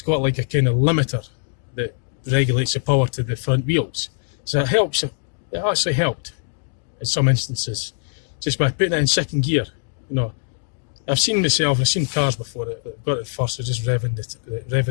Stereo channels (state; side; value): silent; right; digital silence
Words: got like a kind of limiter that regulates the power to the front wheels. So it helps. It actually helped in some instances just by putting it in second gear. You know, I've seen cars before that got it first, so just revving